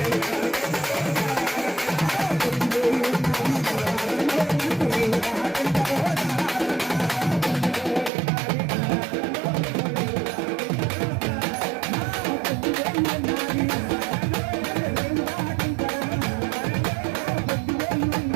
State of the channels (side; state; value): left; drops out; at 8.1 s